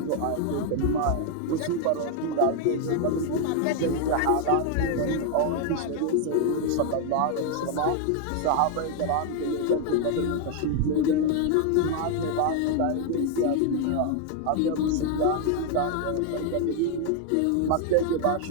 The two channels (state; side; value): different; both; correlation 0.01